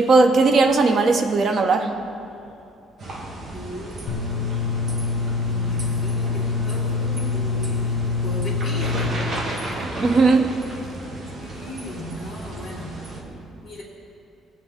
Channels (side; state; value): both; normal; correlation 0.51